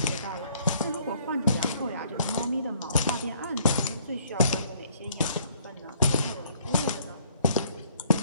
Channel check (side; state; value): both; inverted; correlation -0.62